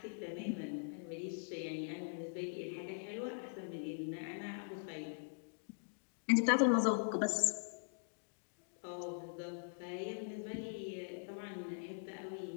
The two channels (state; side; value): silent; right; digital silence